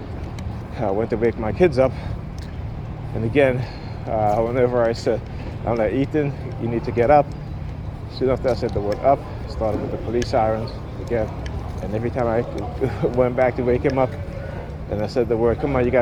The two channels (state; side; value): identical; both; correlation 1.00